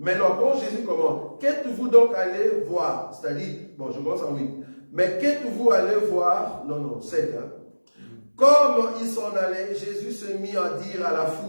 quand Jésus commence, qu'êtes-vous donc allé voir? C'est-à-dire, bon, je commence en 8. Mais qu'êtes-vous allé voir? Non, 7. Comme ils s'en allaient, Jésus se mit à dire à la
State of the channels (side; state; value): both; inverted; correlation -1.00